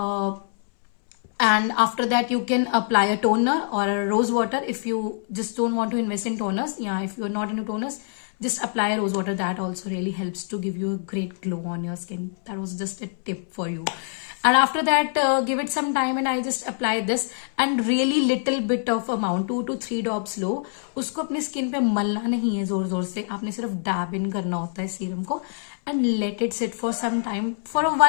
And after that you can apply a toner or a rose water if you just don't want to invest in toners. Yeah, if you're not into toners, just apply a rose water. That also really helps to give you a great glow on your skin. That was just a tip for you. And after that give it some time and I just apply this and really little bit of amount, 2 to 3 drops लो, उसको अपने skin पे मलना नहीं है जोर जोर से, आपने सिर्फ डैब इन करना होता है सीरम को and let it sit for some time for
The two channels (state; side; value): silent; right; 62 dB below the other